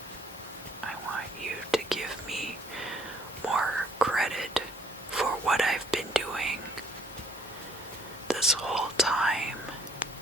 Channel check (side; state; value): both; normal; correlation 0.62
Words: I want you to give me more credit for what I've been doing this whole time.